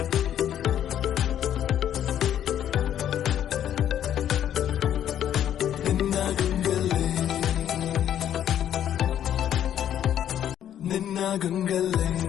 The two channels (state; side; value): quieter; right; 10.4 dB